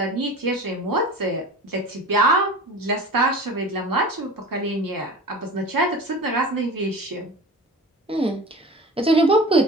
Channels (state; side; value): normal; both; correlation 0.35